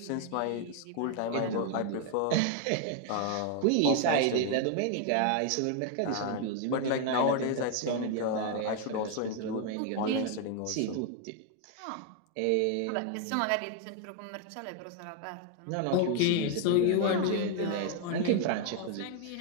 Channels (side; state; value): both; different; correlation 0.00